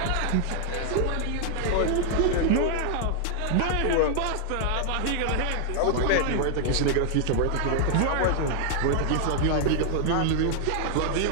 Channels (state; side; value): different; both; correlation 0.00